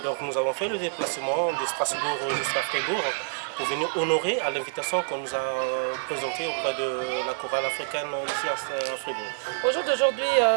nous avons fait le déplacement de Strasbourg jusqu'à Fribourg pour venir honorer à l'invitation qu'on nous a présentée auprès de la chorale africaine ici à Fribourg. Au jour d'aujourd'hui,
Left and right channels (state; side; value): silent; left; digital silence